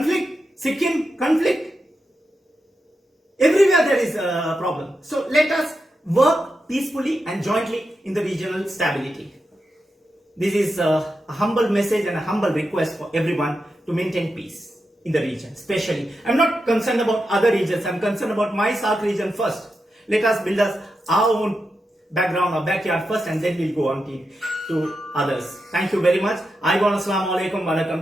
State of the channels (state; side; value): normal; both; correlation 0.88